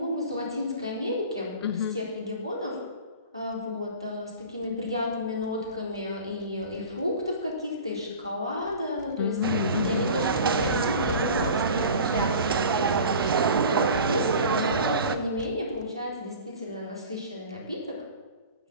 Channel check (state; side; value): inverted; both; correlation -0.39